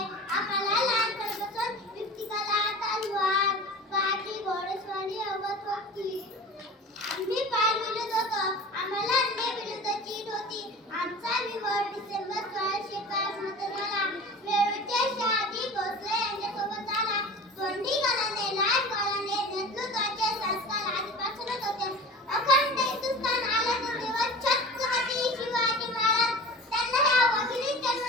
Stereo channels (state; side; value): normal; both; correlation 0.37